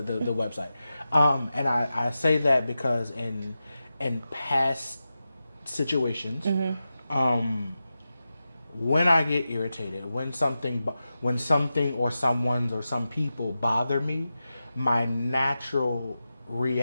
the website. And I say that because in past situations, when I get irritated, when something or someone's or some people bother me, my natural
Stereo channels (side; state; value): both; inverted; correlation -0.92